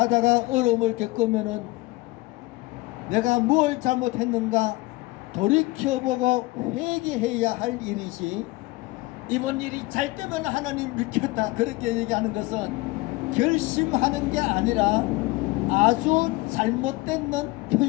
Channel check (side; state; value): right; quieter; 21.6 dB